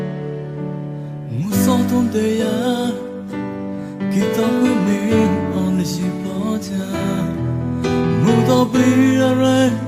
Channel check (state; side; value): identical; both; correlation 1.00